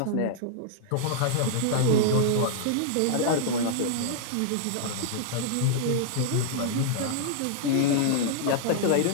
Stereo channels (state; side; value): different; both; correlation -0.01